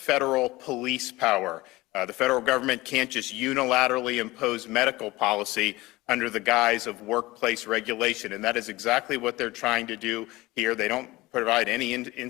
police power. The federal government can't just unilaterally impose medical policy under the guise of workplace regulation, and that is exactly what they're trying to do here. They don't provide any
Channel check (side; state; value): right; quieter; 20.0 dB